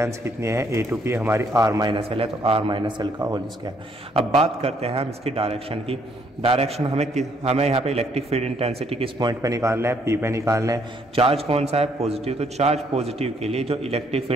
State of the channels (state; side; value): normal; both; correlation 0.68